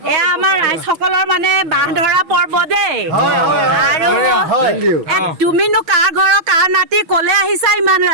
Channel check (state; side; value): late; left; 6.3 ms